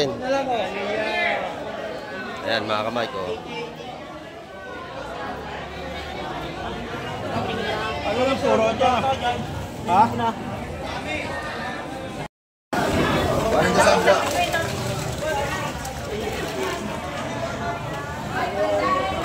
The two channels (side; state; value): both; identical; correlation 1.00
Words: Ayan, mga kamay ko. Ano lang puro ito? Ha?